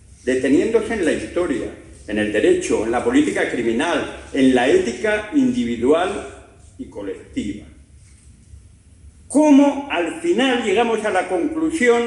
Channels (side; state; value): both; identical; correlation 1.00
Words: deteniéndose en la historia, en el derecho, en la política criminal, en la ética individual y colectiva. Cómo al final llegamos a la